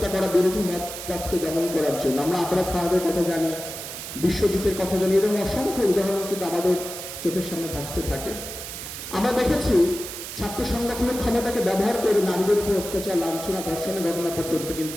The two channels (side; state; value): right; noise; hiss, 9 dB below the sound